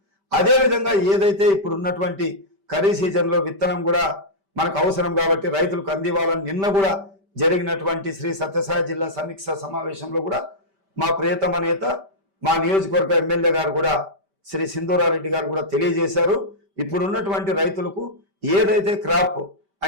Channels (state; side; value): late; left; 5.1 ms